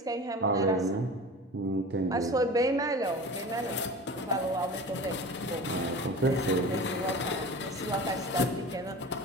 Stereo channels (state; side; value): normal; both; correlation 0.35